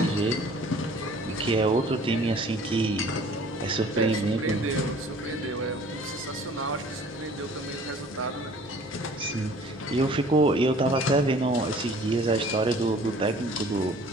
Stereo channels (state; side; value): normal; both; correlation 0.51